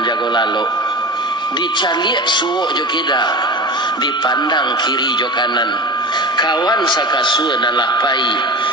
jago lalu, dicaliak suuk jo kida, dipandang kiri jo kanan, kawan sakasua nan lapai,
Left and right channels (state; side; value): normal; both; correlation 0.31